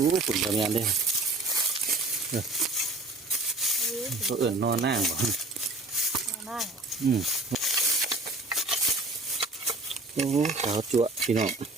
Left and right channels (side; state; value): left; quieter; 3.0 dB